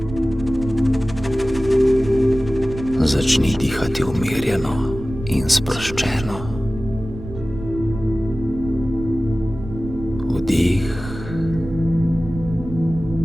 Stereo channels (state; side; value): noise; right; rumble, 11 dB below the sound